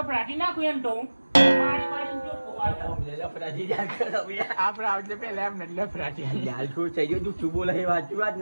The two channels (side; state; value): both; inverted; correlation -1.00